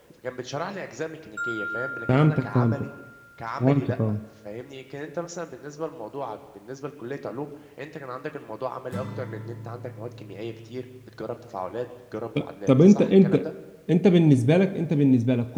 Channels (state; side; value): identical; both; correlation 1.00